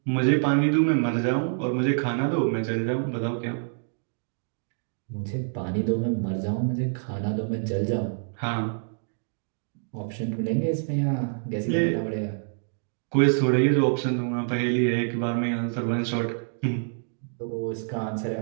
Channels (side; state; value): left; silent; digital silence